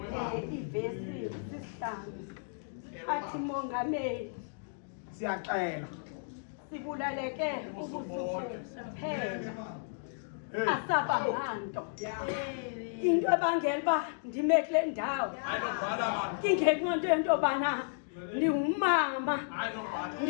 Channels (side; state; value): right; silent; digital silence